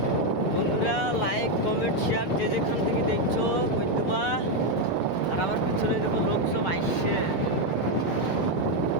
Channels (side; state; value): right; late; 6.8 ms